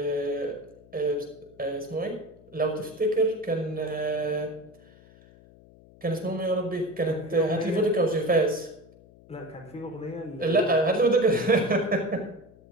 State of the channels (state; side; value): noise; left; hum, 24 dB below the sound